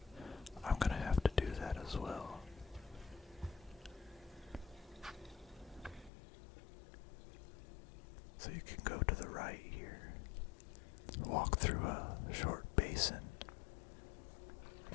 I'm gonna have to do that as well. So you can go to the right here, walk through a short basin,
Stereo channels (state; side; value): drops out; right; at 6.1 s